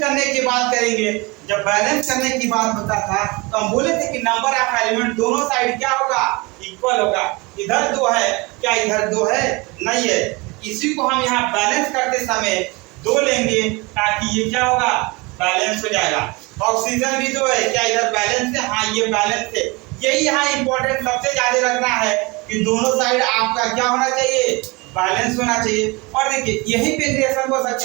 की बात करेंगे, जब बैलेंस करने की बात होता था तो हम बोले थे कि नंबर ऑफ एलिमेंट दोनों साइड क्या होगा, इक्वल होगा। इधर 2 है, क्या इधर 2 है, नहीं है। इसी को हम यहाँ बैलेंस करते समय 2 लेंगे ताकि ये क्या होगा, बैलेंस हो जाएगा। ऑक्सीजन भी 2 है, क्या इधर बैलेंस है, हाँ ये बैलेंस है। यही यहाँ इंपॉर्टेंट सबसे ज्यादा रखना है कि दोनों साइड आपका क्या होना चाहिए, बैलेंस होना चाहिए। और देखिए यही पे रिएक्शन हो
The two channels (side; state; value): left; quieter; 25.7 dB